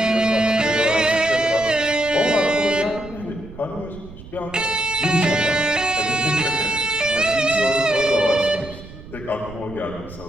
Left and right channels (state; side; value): noise; right; rumble, 16 dB below the sound